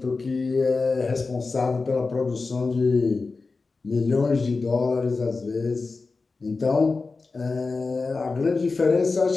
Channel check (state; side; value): quieter; right; 4.0 dB